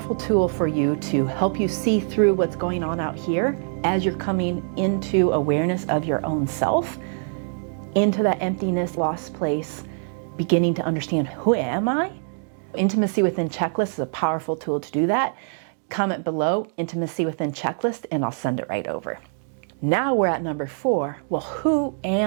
tool for you to help you see through what's going on out here as you're coming into awareness of your own self, into that emptiness, lost place, beginning to understand, who am I? Intimacy Within Checklist is a powerful tool to do that. Comment below, Intimacy Within Checklist, and I'll send it right over. Now we're at number 4. Well, who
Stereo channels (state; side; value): silent; left; 57 dB below the other